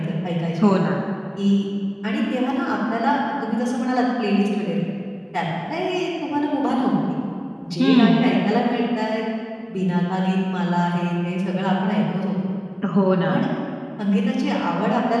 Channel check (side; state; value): both; identical; correlation 1.00